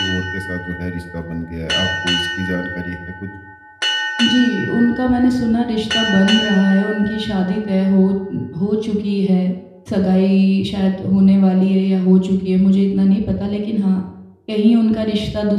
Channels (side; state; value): both; identical; correlation 1.00